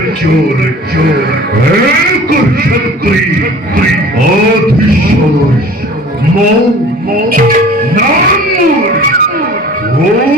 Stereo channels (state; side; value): normal; both; correlation 0.45